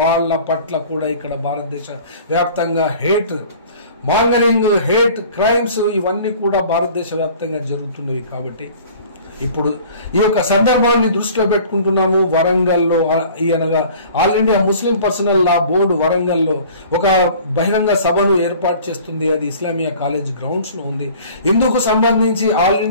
పట్ల కూడా ఇక్కడ భారతదేశ వ్యాప్తంగా హేట్ మాంగరింగ్, హేట్ క్రైమ్స్ ఇవన్నీ కూడా భారతదేశ వ్యాప్తంగా జరుగుతున్నవి. కాబట్టి ఇప్పుడు ఈ యొక్క సందర్భాన్ని దృష్టిలో పెట్టుకుంటున్నాము. వరంగల్లో అనగా ఆల్ ఇండియా ముస్లిం పర్సనల్ లా బోర్డు వరంగల్లో ఒక బహిరంగ సభను ఏర్పాటు చేస్తుంది. అది ఇస్లామియా కాలేజ్ గ్రౌండ్స్ లో ఉంది. ఇందుకు సంబంధించి ఆల్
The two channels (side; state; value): both; inverted; correlation -0.47